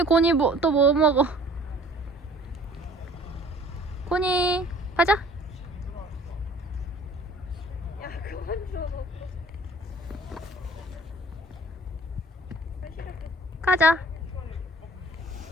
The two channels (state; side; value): normal; both; correlation 0.52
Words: 고니 또 뭐 먹어? 고니 가자. 야, 그만 줘. 가자.